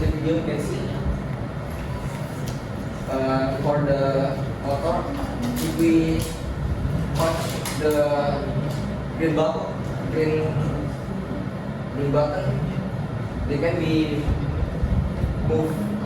the video you can see. For the motor, if we touch the green button, they can be moved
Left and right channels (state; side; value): identical; both; correlation 1.00